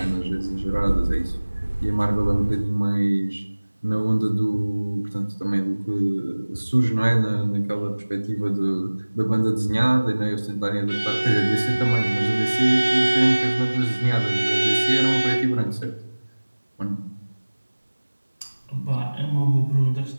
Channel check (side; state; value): both; inverted; correlation -1.00